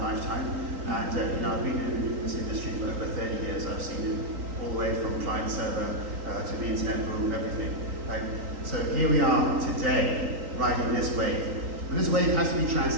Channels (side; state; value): left; late; 3.8 ms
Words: And I've been in this industry for over 30 years. I've seen it all the way from client server to the internet boom, everything. Right? So here we are today, riding this wave. But this wave has to be